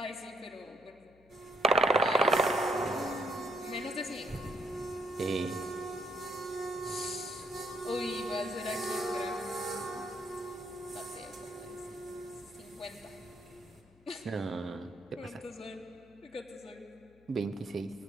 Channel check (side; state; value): left; noise; hum, 28 dB below the sound